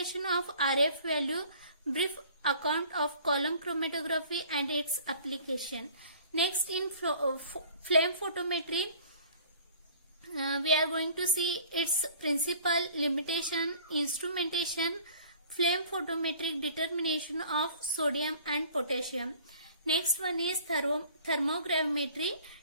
of RF value, brief account of column chromatography and its application. Next, in flame photometry, we are going to see its principle, limitation, instrumentation, flame photometric determination of sodium and potassium. Next one is thermogravimetry,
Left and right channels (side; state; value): both; inverted; correlation -0.50